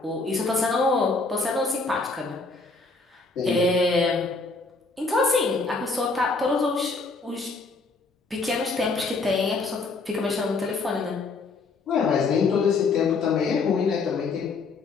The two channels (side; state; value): right; quieter; 4.0 dB